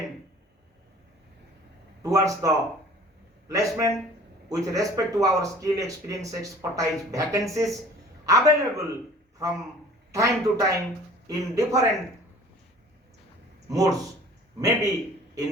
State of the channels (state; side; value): normal; both; correlation 0.48